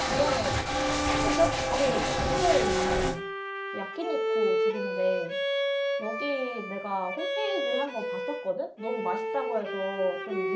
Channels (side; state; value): both; identical; correlation 1.00